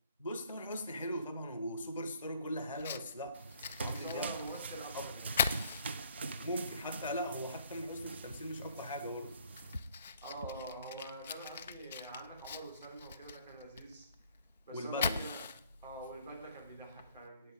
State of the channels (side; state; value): both; inverted; correlation -0.61